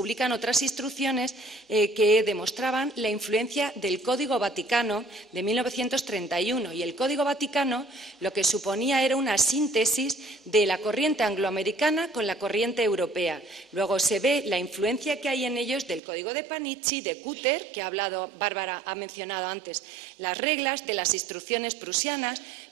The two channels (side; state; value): left; drops out; at 16.0 s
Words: otras instrucciones que demostraban la influencia del Código Vaticano de 1931. Y el Código Vaticano lo que suponía era una síntesis de la corriente angloamericana con la corriente europea. Luego se ve la influencia que hay en ellos del Código de Panichi, de Cutter, que Bárbara ha mencionado antes, las reglas de las instrucciones prusianas.